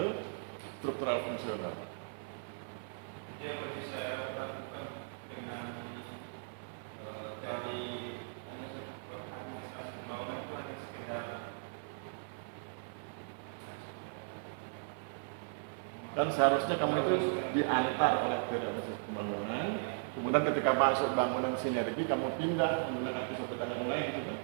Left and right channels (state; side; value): silent; left; 53 dB below the other